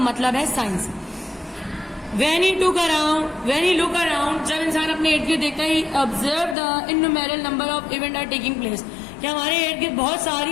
है science. When he look around, जब इंसान अपने इर्द गिर्द देखता है, observe the innumerable number of events are taking place, कि हमारे इर्द गिर्द बहुत सारी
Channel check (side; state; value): right; drops out; at 6.6 s